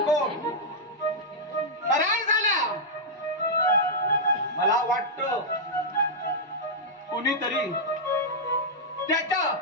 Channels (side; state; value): both; normal; correlation -0.07